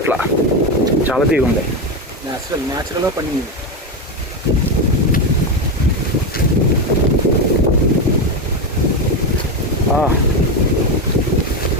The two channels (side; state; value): both; normal; correlation 0.13